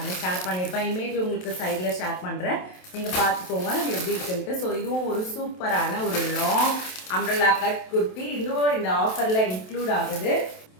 ஷேர் பண்ணியிருப்பேன். இமேஜ் உங்களுக்கு சைடில் ஷேர் பண்ணுறேன், நீங்கள் பார்த்துக்கோங்க எப்படி இருக்குன்ட்டு. ஸோ இதுவும் ஒரு சூப்பரான ஒரு லாங் அம்ப்ரெல்லா கட் குர்த்தி. இன்னும் இந்த ஆஃபரில் இன்க்ளூட் ஆகுது.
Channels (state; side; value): late; right; 27 ms